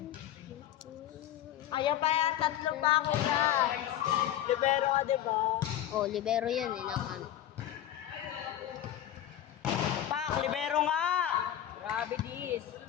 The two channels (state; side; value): quieter; right; 11.7 dB